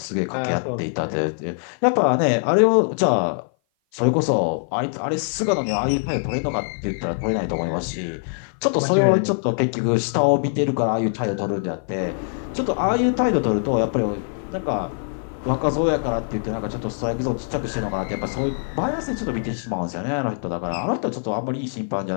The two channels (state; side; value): silent; right; 57 dB below the other